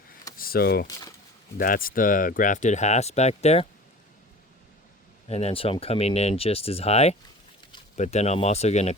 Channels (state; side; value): normal; both; correlation 0.40